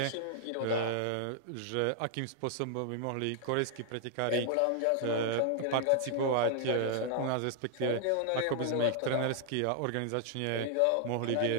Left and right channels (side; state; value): both; different; correlation 0.00